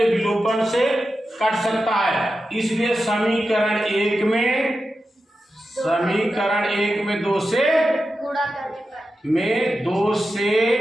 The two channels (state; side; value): normal; both; correlation 0.91